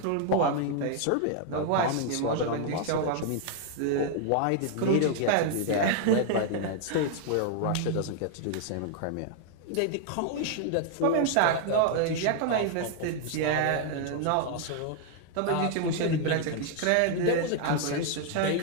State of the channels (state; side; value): different; both; correlation 0.00